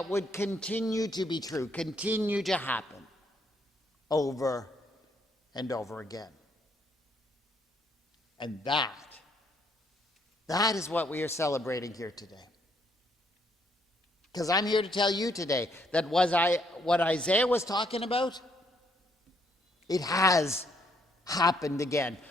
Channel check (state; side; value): normal; both; correlation 0.71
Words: would continue to be true, continue to happen over and over again. And that is what we are celebrating here today. Because I'm here to tell you today that what Isaiah was talking about, it has happened again.